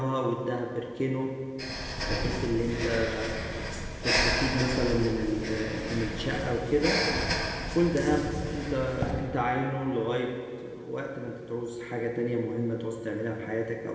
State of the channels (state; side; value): identical; both; correlation 1.00